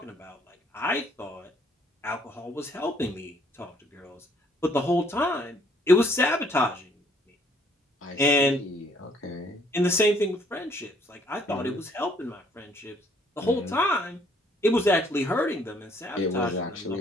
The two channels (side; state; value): both; normal; correlation 0.64